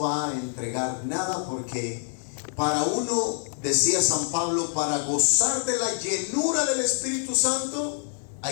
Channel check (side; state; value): right; silent; 60 dB below the other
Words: a entregar nada, porque para uno, decía San Pablo, para gozar de la llenura del Espíritu Santo